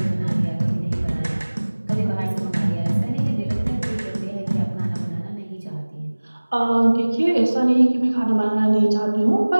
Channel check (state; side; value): inverted; both; correlation -1.00